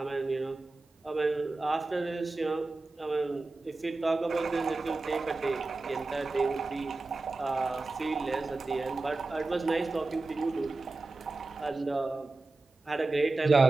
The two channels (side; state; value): left; quieter; 3.3 dB